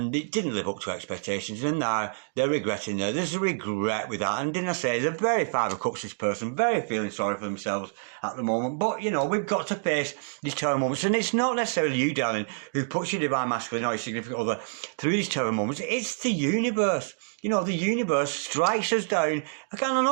it didn't live up to expectations, and now they're regretting there. There's a regret with that, and didn't I say, they're very Five of Cups, this person, very feeling sorry for themselves at the moment. But, we've got to face these terror moments, and it's not necessarily you, darling, who puts your divine masculine or your significant other through these terror moments. It's the universe. The universe strikes us down. I don't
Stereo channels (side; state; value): left; silent; digital silence